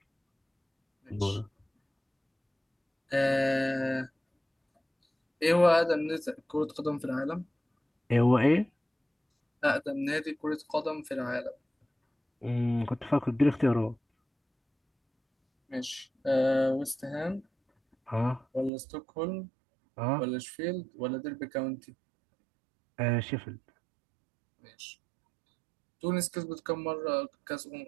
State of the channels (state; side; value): drops out; left; at 18.7 s